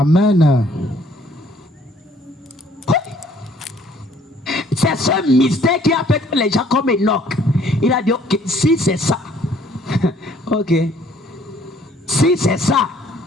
C'est ce mystère qui a fait que les gens comme Enoch. Il a dit, ok, si c'est ça, ok, si c'est ça,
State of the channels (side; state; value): both; normal; correlation 0.60